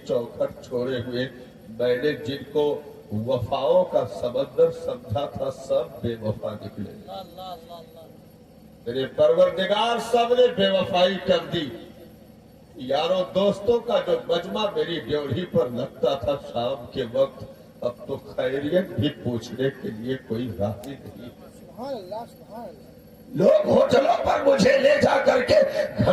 چوکھٹ چھوڑے ہوئے، میں نے جن کو وفاؤں کا سمندر سمجھا تھا سب بے وفا نکلے، اللہ اللہ اللہ اللہ میرے پروردگار سب نے بے وفائی کر دی۔ یاروں دوستوں کا جو مجمع میری ڈیوڑھی پر لگتا تھا شام کے وقت، اب تو خیریت بھی پوچھنے کے لیے کوئی راضی نہیں۔ سبحان اللہ سبحان اللہ۔ لوگ ہوٹلوں پر مجھے لے جا کر کے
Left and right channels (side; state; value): both; identical; correlation 1.00